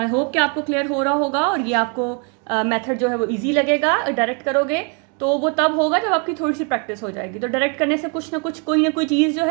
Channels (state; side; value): quieter; left; 35.8 dB